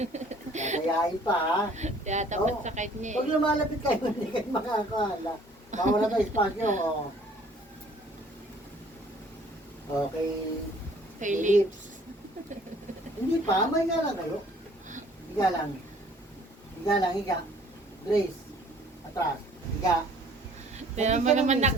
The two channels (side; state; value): both; normal; correlation 0.55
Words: Kakayain pa ha. Kaya tapat Oo. sa kanya Pag eh. lumalapit kayo, hindi kayo makakahala. Bawala tayo espasyo. Oh. Okay. Kay lips. Hindi pa, may higa lang kayo. Higa lang. Higa lang, higa. Grace. Atras. Higa. Tignan mo naman